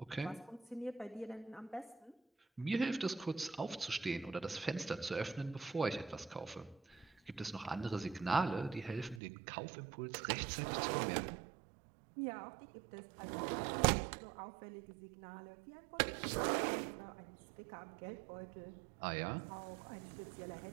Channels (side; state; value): left; drops out; at 9.2 s